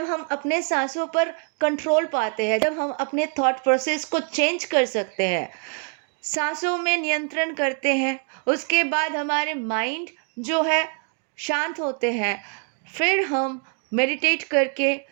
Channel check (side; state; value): left; quieter; 37.5 dB